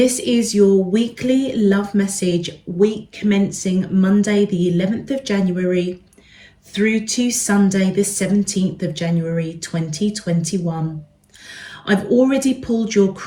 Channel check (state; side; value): identical; both; correlation 1.00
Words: is your weekly love message, week commencing Monday, the 11th of January, through to Sunday, the 17th of January, 2021. I've already pulled your